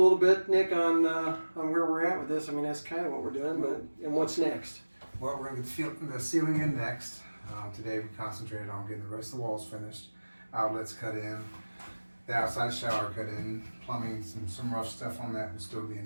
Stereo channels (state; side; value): inverted; both; correlation -1.00